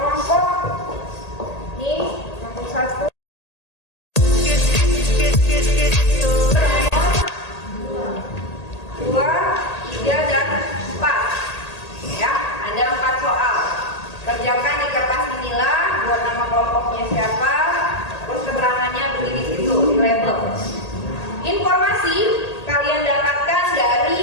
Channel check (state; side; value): late; right; 1.8 ms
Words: Nih, kelompok 1. Dua, 3, dan 4. Ya, ada 4 soal. Kerjakan di kertas inilah, buat nama kelompoknya siapa, terus keterangannya beri di situ, di label. Informasi kalian dapatkan